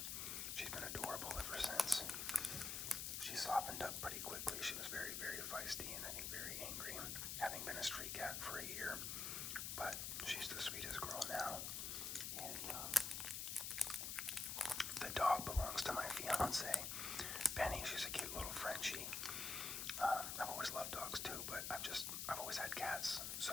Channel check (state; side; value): noise; left; hiss, 2 dB below the sound